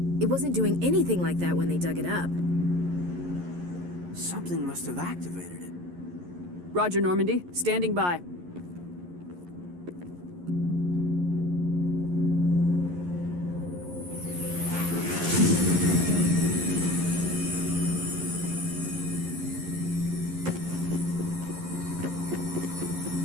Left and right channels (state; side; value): late; left; 11 ms